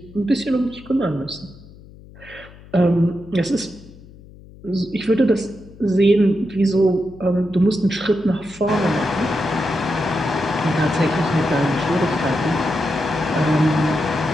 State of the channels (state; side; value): noise; left; hum, 21 dB below the sound